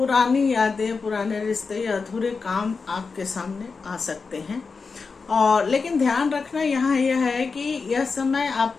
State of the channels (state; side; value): quieter; right; 4.7 dB